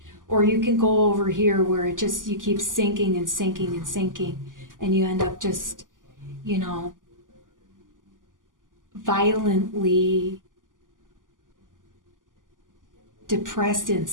Or you can go over here where you keep sinking and sinking and sinking, and you end up just, violently depressed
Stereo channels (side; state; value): left; late; 0.88 ms